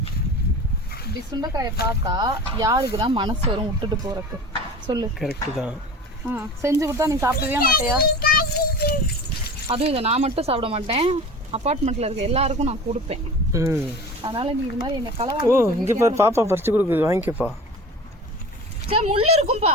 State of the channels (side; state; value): both; normal; correlation 0.36